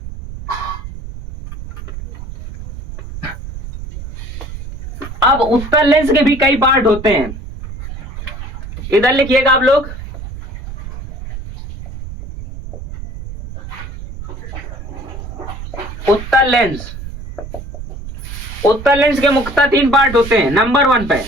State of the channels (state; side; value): noise; right; rumble, 11 dB below the sound